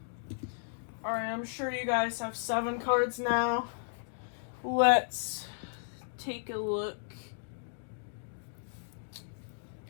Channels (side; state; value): right; silent; digital silence